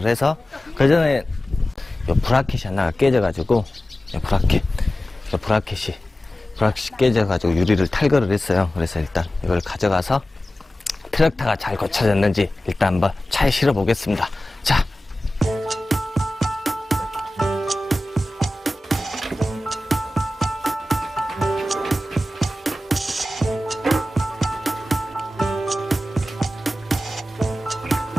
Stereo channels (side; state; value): both; normal; correlation 0.95